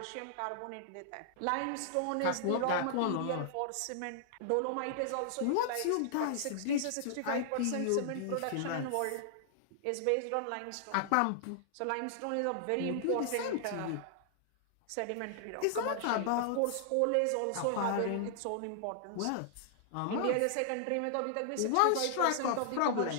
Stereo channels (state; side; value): different; both; correlation -0.01